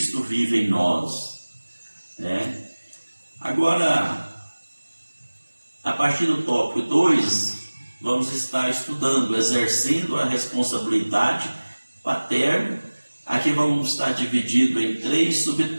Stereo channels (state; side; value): inverted; both; correlation -1.00